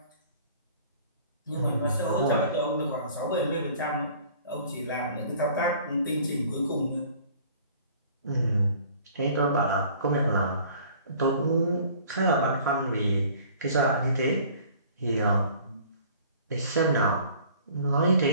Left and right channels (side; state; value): both; inverted; correlation -0.51